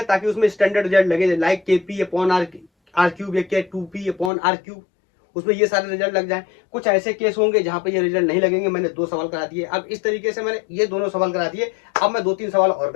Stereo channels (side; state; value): right; drops out; at 4.3 s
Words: ताकि उसमें स्टैंडर्ड रिजल्ट लगे, लाइक KP/R³ या K2P/R³, उसमें ये सारे रिजल्ट लग जाए। कुछ ऐसे केस होंगे जहां पे ये रिजल्ट नहीं लगेंगे। मैंने 2 सवाल करा दिए। अब इस तरीके से मैंने ये दोनों सवाल करा दिए, अब मैं 2-3 सवाल और